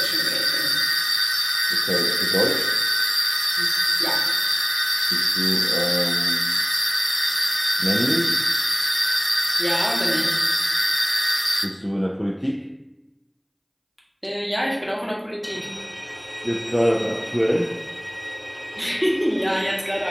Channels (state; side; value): identical; both; correlation 1.00